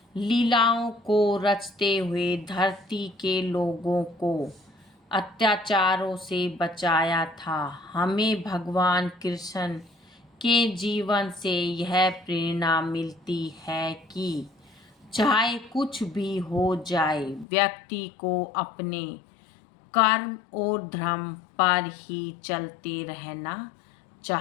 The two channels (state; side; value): drops out; right; at 17.4 s